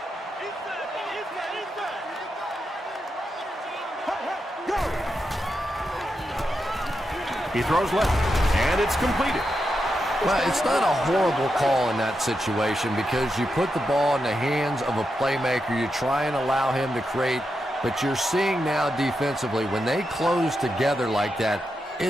He throws left, and it's completed. Well, it's not a horrible call in that situation because you put the ball in the hands of a playmaker. You try and allow him to create, but you're seeing now defensively, when they close together like that,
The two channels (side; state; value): both; normal; correlation 0.86